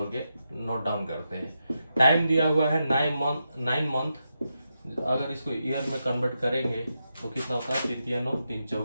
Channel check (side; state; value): both; inverted; correlation -0.86